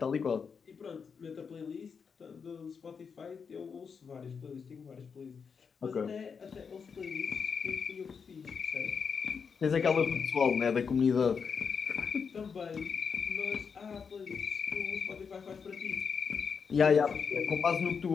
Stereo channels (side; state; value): right; quieter; 6.0 dB